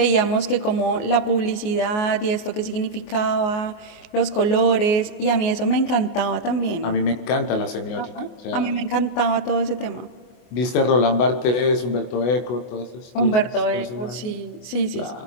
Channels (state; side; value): late; right; 24 ms